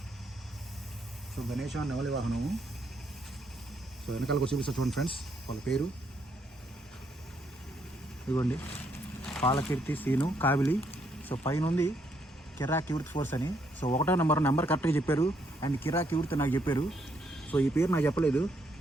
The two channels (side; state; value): both; normal; correlation 0.73